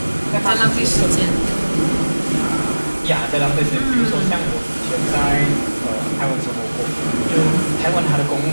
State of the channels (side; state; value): both; inverted; correlation -1.00